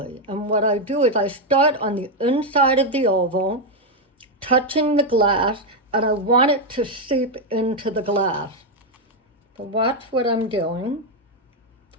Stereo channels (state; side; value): normal; both; correlation 0.03